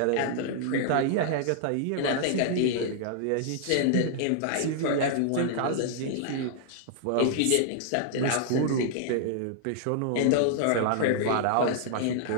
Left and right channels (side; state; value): both; different; correlation -0.01